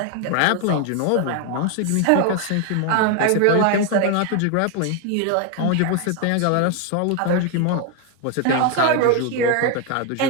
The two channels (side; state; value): both; different; correlation 0.01